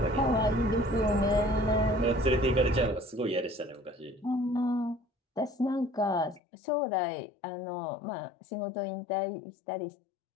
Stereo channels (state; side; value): drops out; right; at 6.4 s